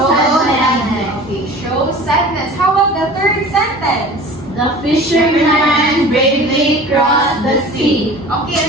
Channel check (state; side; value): normal; both; correlation 0.41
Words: Okay, show sadness. How about the third sentence? The fisherman bravely crossed the sea. Okay,